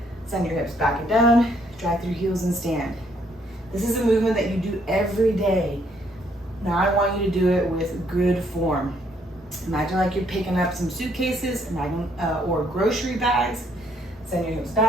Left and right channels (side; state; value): both; normal; correlation 0.68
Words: Send your hips back and down, drive through heels and stand. This is a movement that you do every day. Now I want you to do it with good form. Imagine like you're picking up some suitcases, or grocery bags. Send your hips